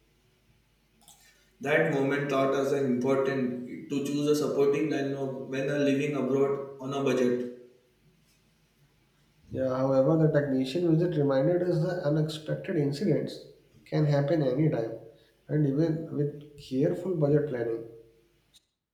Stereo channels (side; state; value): both; identical; correlation 1.00